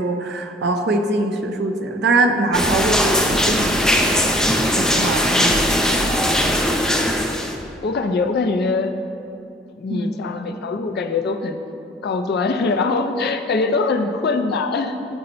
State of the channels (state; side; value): normal; both; correlation 0.48